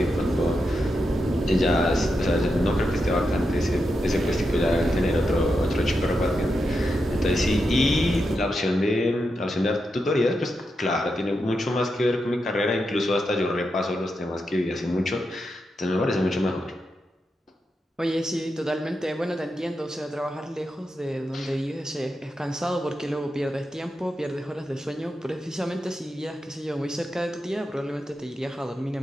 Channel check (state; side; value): normal; both; correlation 0.86